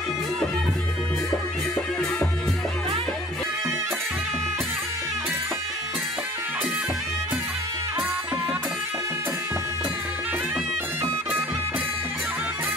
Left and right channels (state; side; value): normal; both; correlation 0.49